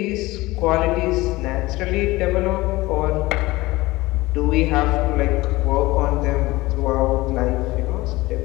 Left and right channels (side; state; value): right; quieter; 19.9 dB